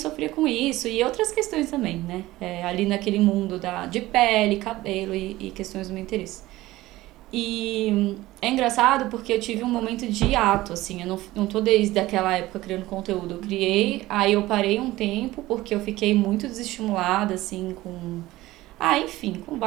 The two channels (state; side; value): quieter; left; 17.4 dB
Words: com isso e outras questões também, né? Ali naquele mundo de pele, cabelo e questões do meu interesse. E é engraçado porque eu tive um momento de hiato, assim, eu não tô desde aquela época criando conteúdo. Eu criei, aí eu parei um tempo porque eu fiquei muito desestimulada, assim, com